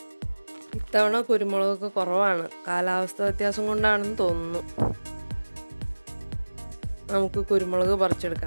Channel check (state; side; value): inverted; both; correlation -1.00